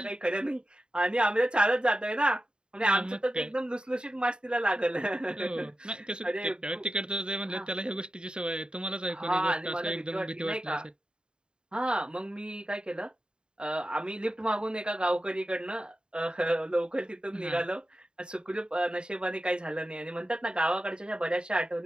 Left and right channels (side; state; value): left; late; 0.050 ms